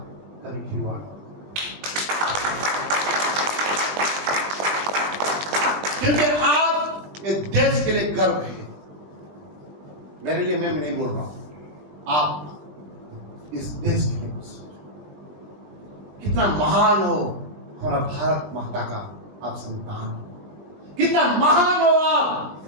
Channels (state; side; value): late; left; 20 ms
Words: कभी खिलवाड़ मत। क्योंकि आप एक देश के लिए गर्व है। मेरे लिए मैं नहीं बोल रहा हूं, आप इस देश के लिए कुछ सोचो। कितना महान हो हमारा भारत माता का आप संतान हो, कितना महान हो